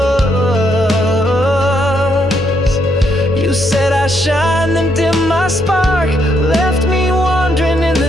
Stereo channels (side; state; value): both; normal; correlation 0.75